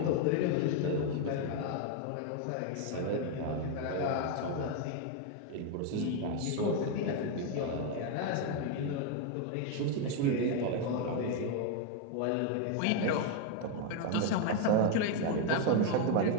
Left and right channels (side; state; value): both; different; correlation 0.01